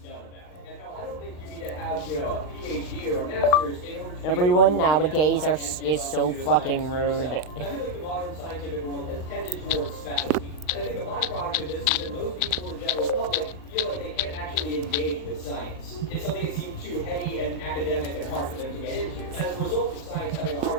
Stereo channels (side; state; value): right; late; 39 ms